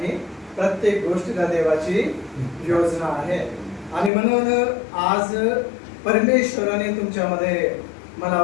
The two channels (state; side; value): drops out; right; at 4.1 s